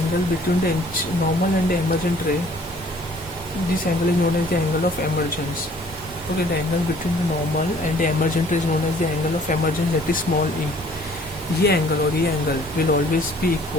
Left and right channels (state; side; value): normal; both; correlation 0.56